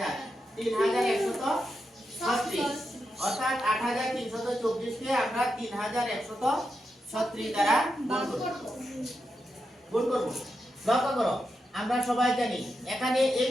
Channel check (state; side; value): normal; both; correlation 0.86